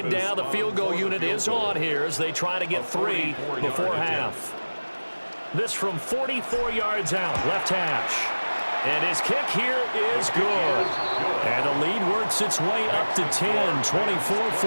down, the field goal unit is on here as they try to get 3 before half. This from 44 yards out, left hash. And his kick here is good. And the lead works its way up to 10,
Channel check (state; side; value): inverted; both; correlation -1.00